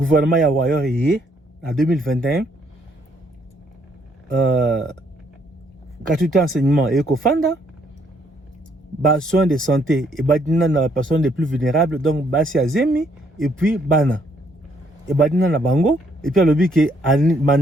ya Wayor en 2021, gratuité enseignement et Kofanda, soins de santé et badina na personnes les plus vulnérables, donc basi azemi et puis bana et badina na bango et puis alobi ke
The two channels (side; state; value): both; normal; correlation 0.69